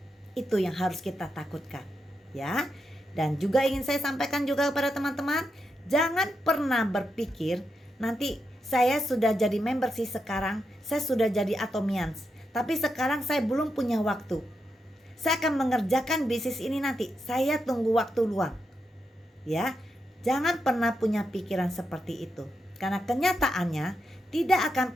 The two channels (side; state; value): both; normal; correlation 0.85